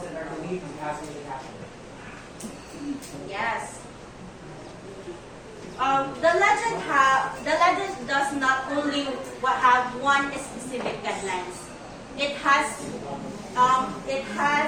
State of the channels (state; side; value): identical; both; correlation 1.00